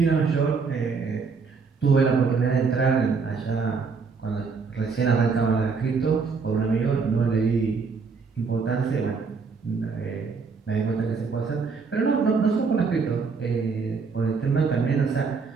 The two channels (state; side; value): quieter; left; 5.0 dB